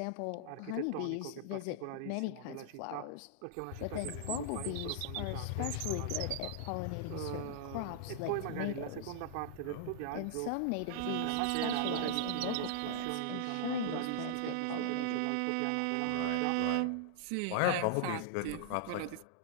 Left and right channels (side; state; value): both; different; correlation -0.01